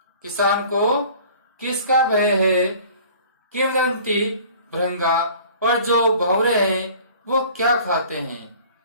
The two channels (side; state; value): both; inverted; correlation -0.48